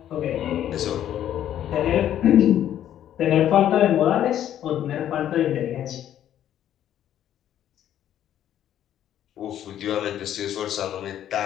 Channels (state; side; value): quieter; right; 11.1 dB